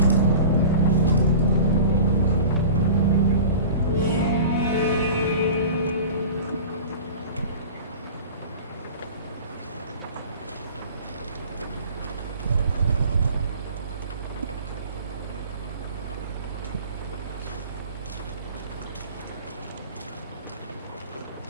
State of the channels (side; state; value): both; inverted; correlation -0.39